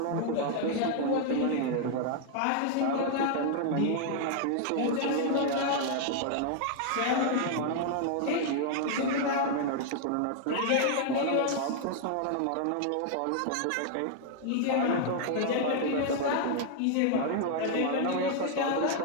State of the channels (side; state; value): both; different; correlation 0.00